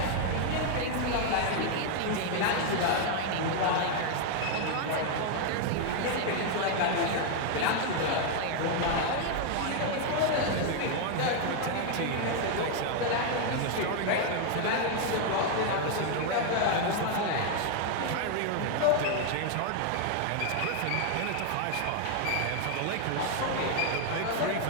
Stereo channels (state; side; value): different; both; correlation 0.00